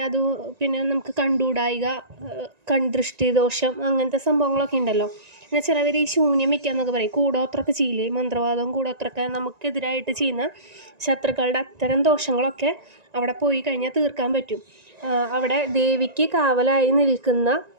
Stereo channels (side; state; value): left; late; 1.9 ms